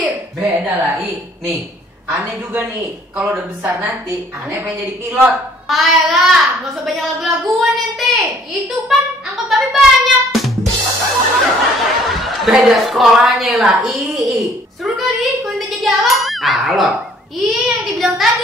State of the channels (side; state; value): both; normal; correlation 0.59